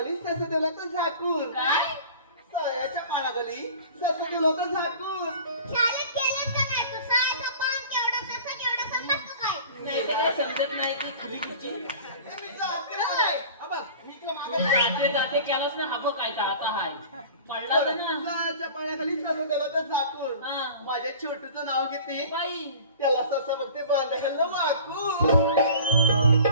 सस दिलं तर झाकून. काय? सायाच्या पानाखाली सस दिलं तर झाकून. शाळेत गेलेच का नाही तू? सायचा पान केवढा ससा केवढा समजतो काय? नाही ते काय समजत नाही की खुली तिची ए, मी जाते रे. अबा, मी तुला मागं जाते जाते केलास ना हा बघ काय तर आता हाय पडला होता ना. सायाच्या पानाखाली सस दिलं तर झाकून. हा. माझ्या छोटूचं नाव घेते बाई त्याला ससा बघते बांधाखालं वाकून.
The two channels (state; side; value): inverted; both; correlation -0.43